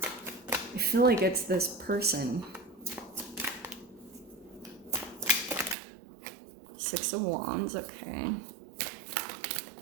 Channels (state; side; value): drops out; left; at 5.8 s